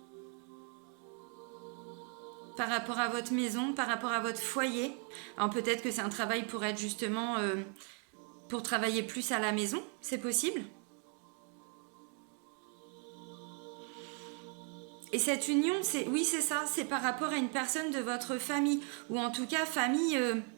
par rapport à votre maison, par rapport à votre foyer. Alors peut-être que c'est un travail pour être justement pour travailler plus à la maison, c'est possible. Et cette union, oui c'est ça, c'est par rapport à une personne de votre famille, ou en tout cas famille,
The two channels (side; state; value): left; quieter; 39.9 dB